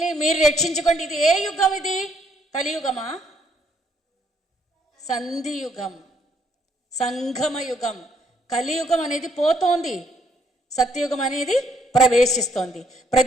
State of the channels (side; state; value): both; normal; correlation 0.69